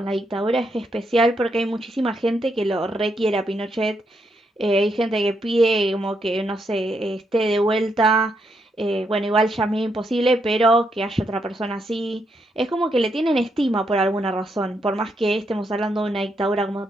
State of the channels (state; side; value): normal; both; correlation 0.79